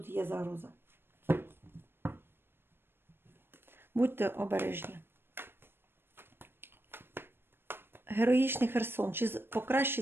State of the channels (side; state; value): left; late; 0.10 ms